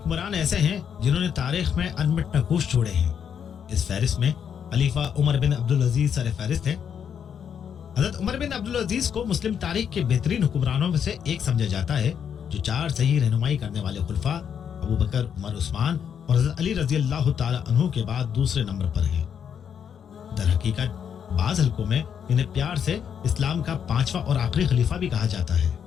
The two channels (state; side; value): quieter; right; 8.0 dB